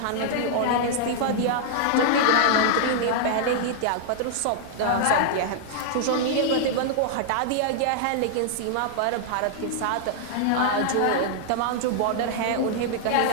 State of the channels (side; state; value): both; different; correlation -0.01